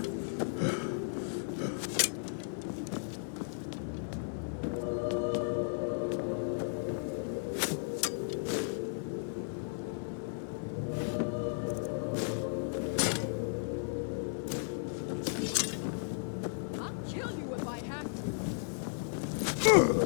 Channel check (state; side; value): silent; right; 54 dB below the other